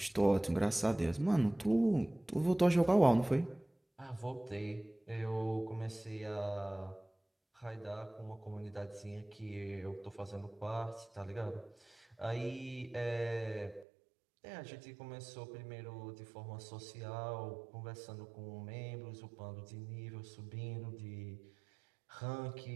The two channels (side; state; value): left; drops out; at 13.9 s